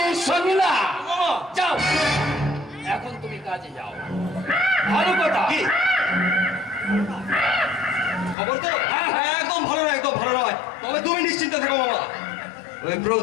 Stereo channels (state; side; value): drops out; right; at 8.3 s